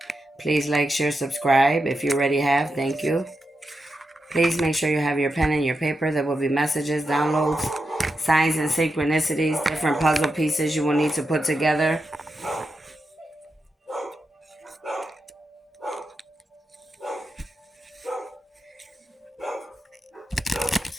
Please like, share, subscribe if you already have. Thank you. Please make sure you have your pen and your paper. There will be messages, downloads, signs and synchronicities, different puzzle pieces you will need to put together.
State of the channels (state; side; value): normal; both; correlation 0.88